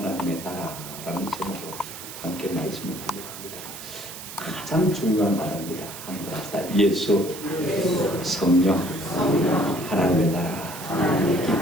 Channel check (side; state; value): right; noise; hiss, 12 dB below the sound